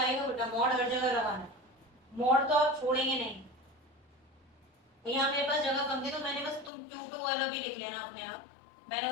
बेटा, मॉड हर जगह लगाना, मॉड तो आप छोड़ेंगे नहीं। यहाँ मेरे पास जगह कम थी तो मैंने बस तुम Q2 वाला भी लिख लेना अपने आप, मैंने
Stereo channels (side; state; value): right; drops out; at 6.7 s